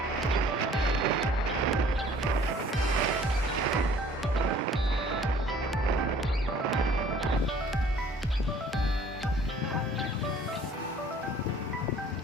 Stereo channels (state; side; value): normal; both; correlation 0.54